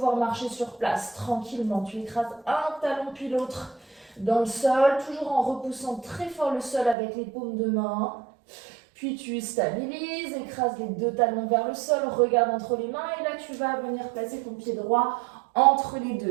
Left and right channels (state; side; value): drops out; left; at 7.0 s